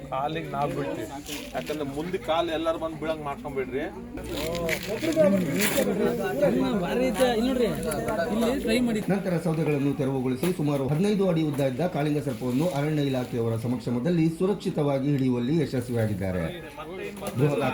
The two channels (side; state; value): both; identical; correlation 1.00